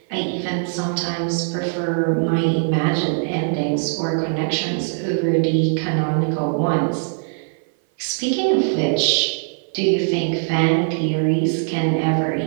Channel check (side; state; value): left; silent; 58 dB below the other